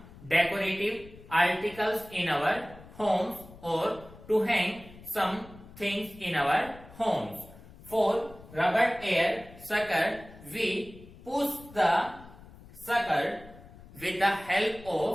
decorative articles in our homes, or to hang some things in our homes. For rubber air sucker, we push the sucker with the help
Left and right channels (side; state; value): left; noise; rumble, 19 dB below the sound